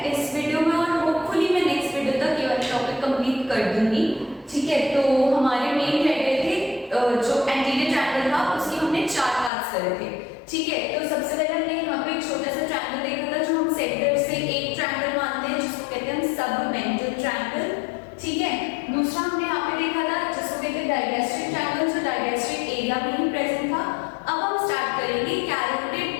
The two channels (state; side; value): drops out; right; at 9.5 s